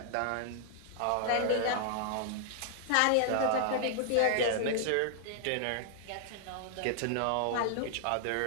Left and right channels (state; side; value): different; both; correlation -0.01